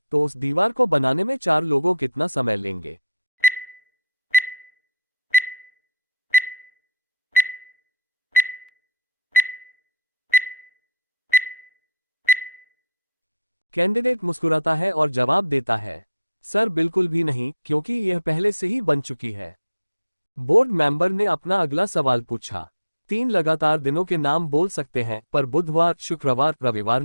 तो उस दीवार को बनाने में 4 लोगों कितना समय लेंगे? कैंडिडेट मुस्कुराता है और जवाब देता है, सर बिल्कुल भी नहीं, क्योंकि यह पहले से ही बन चुकी है। बोर्ड मेंबर ने अपना अगला सवाल पूछा, 3 लगातार दिनों के नाम बोल सकते हैं पर बुधवार, शुक्रवार, रविवार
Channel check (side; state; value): both; inverted; correlation -0.53